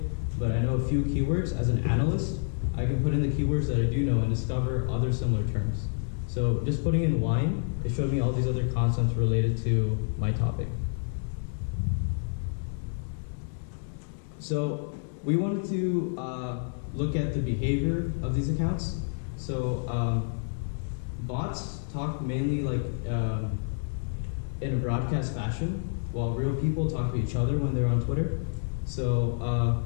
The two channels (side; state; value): right; silent; digital silence